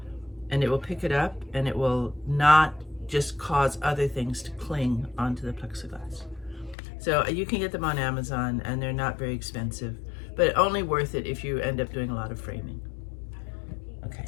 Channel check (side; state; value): right; drops out; at 6.8 s